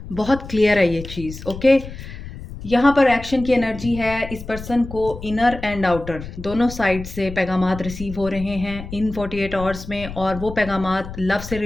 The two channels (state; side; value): noise; left; rumble, 12 dB below the sound